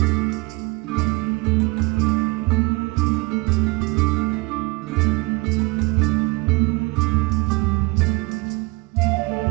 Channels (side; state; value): left; quieter; 24.6 dB